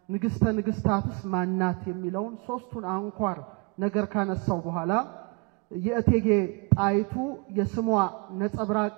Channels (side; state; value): left; quieter; 28.4 dB